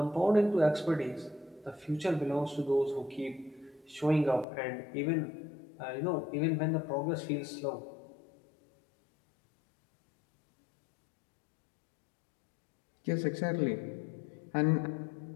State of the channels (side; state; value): right; drops out; at 4.5 s